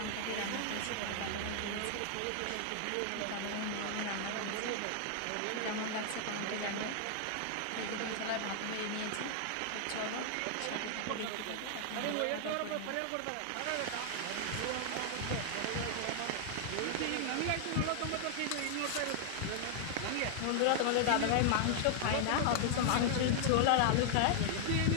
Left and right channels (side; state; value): both; different; correlation 0.00